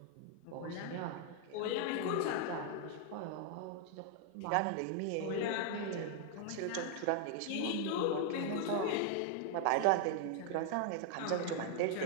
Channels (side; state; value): both; different; correlation 0.00